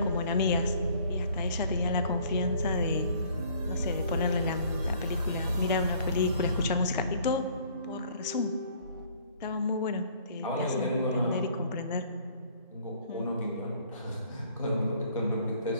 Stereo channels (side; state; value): both; inverted; correlation -0.58